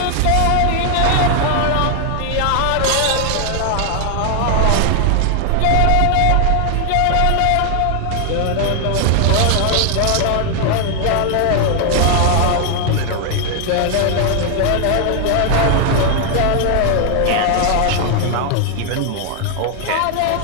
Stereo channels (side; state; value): both; different; correlation 0.00